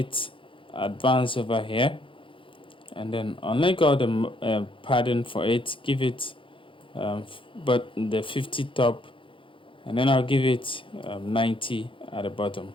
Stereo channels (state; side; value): late; right; 0.25 ms